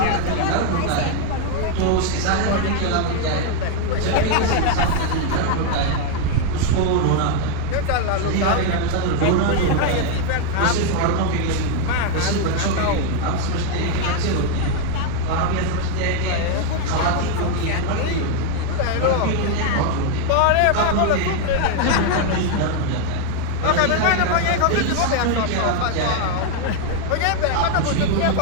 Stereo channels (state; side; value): different; both; correlation 0.00